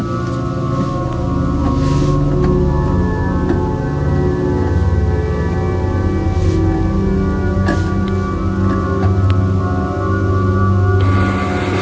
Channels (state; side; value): identical; both; correlation 1.00